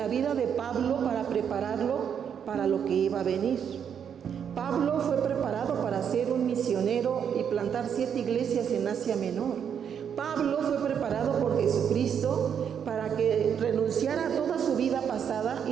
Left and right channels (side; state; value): left; quieter; 8.0 dB